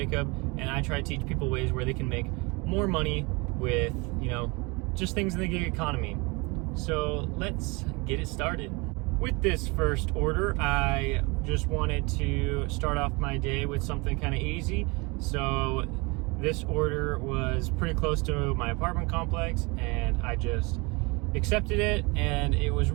and I try to teach people ways where they can make more money with, just things in the gig economy. So let's get it started. With this first order, I just wanted to start off my day with something kind of easy. So this order was pretty close to my apartment complex, and I just accepted it, and it was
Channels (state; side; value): quieter; left; 27.1 dB